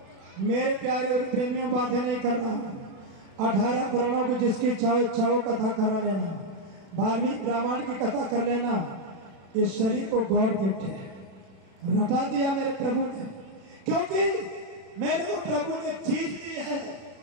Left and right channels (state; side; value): late; left; 36 ms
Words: मेरे प्यारे और प्रेमियों बातें नहीं कर रहा हूं। 18 पुराणों की जिसकी चाहो कथा करा लेना, वाल्मीकि रामायण की कथा कर लेना। इस शरीर को गॉड गिफ्ट है, रटा दिया मेरे प्रभु ने, क्योंकि मेरे को प्रभु ने चीज दी है,